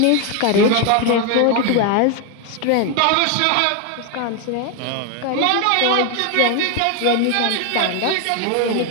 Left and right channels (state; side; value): different; both; correlation 0.01